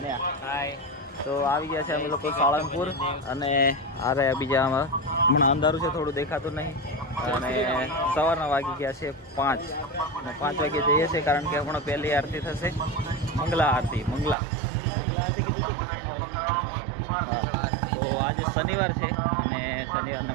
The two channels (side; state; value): left; drops out; at 14.4 s